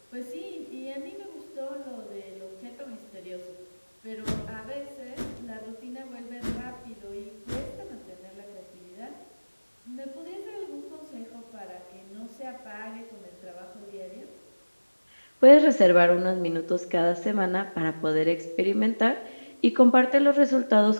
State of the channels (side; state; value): both; inverted; correlation -1.00